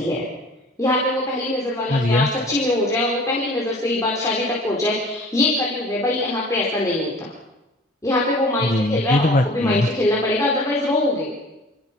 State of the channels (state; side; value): normal; both; correlation 0.46